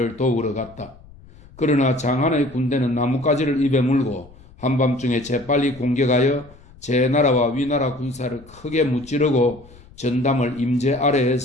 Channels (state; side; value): noise; left; rumble, 23 dB below the sound